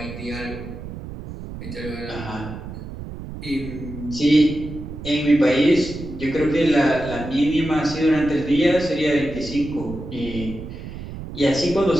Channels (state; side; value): noise; right; rumble, 10 dB below the sound